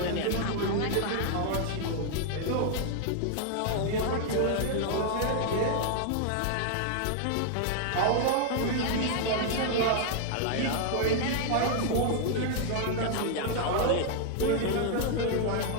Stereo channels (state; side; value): different; both; correlation 0.00